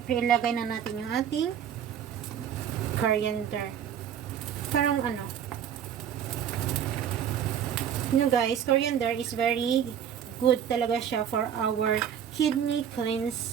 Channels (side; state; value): left; quieter; 8.9 dB